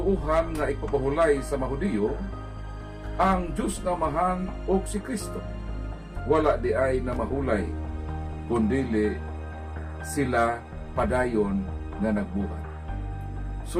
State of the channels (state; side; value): identical; both; correlation 1.00